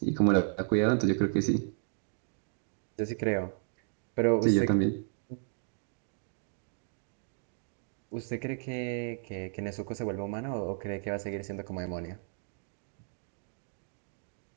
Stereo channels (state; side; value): silent; left; digital silence